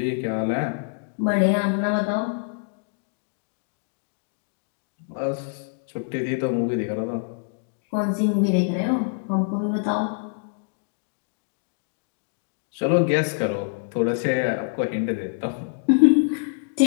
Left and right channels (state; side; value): silent; right; digital silence